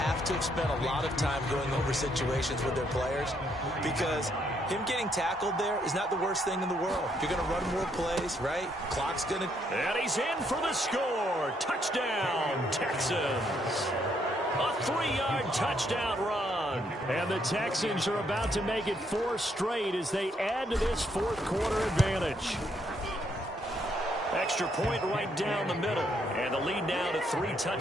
to have spent a lot of time going over situations with their players, because him getting tackled there is not the worst thing in the world. You're going to run more plays, right? Clock's going to... And he's in for the score. Touchdown, Texans. A 3-yard touchdown run. And the Texans are about to make it 4 straight as they add to this fourth-quarter advantage. Extra point right down the middle. And the lead now to 3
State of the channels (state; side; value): normal; both; correlation 0.73